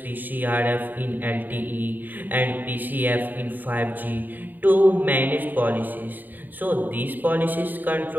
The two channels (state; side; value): late; left; 0.088 ms